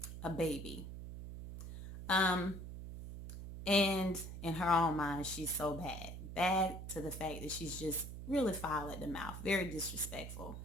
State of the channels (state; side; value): noise; right; hum, 9 dB below the sound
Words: a baby. Um, and in her own mind, she's so bad to the fact that she's just really foul at the mouth, very disrespectful,